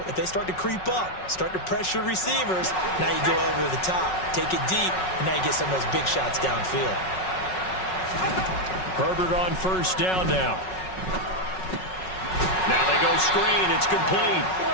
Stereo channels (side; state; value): right; late; 5.4 ms